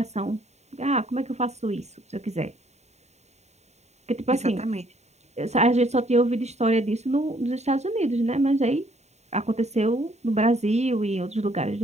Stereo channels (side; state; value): left; late; 0.32 ms